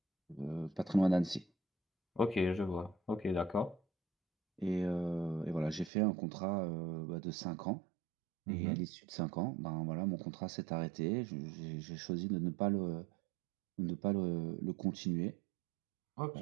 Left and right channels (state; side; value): drops out; left; at 5.9 s